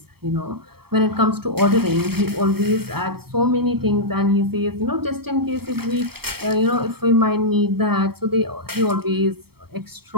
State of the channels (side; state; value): left; late; 0.96 ms